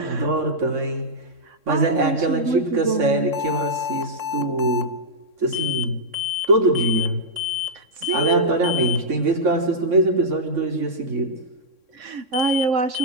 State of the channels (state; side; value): late; left; 3.6 ms